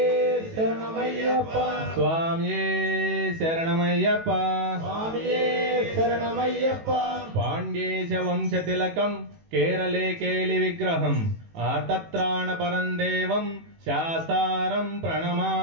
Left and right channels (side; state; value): left; late; 18 ms